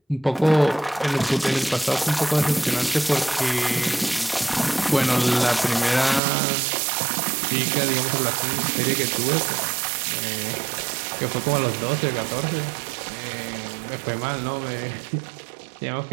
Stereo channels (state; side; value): drops out; left; at 6.2 s